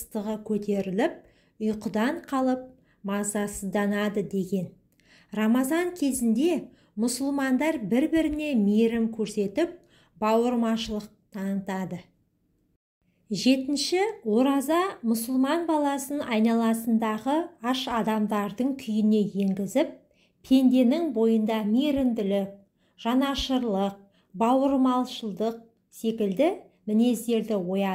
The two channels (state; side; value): identical; both; correlation 1.00